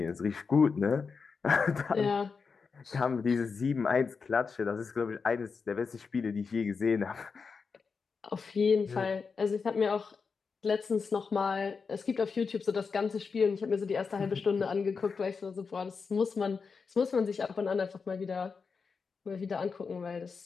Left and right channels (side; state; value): right; quieter; 5.2 dB